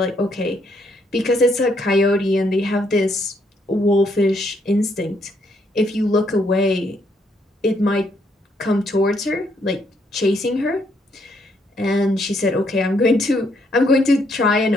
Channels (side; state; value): both; normal; correlation 0.72